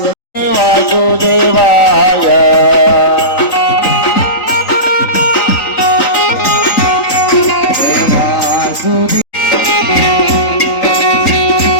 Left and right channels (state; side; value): late; right; 3.9 ms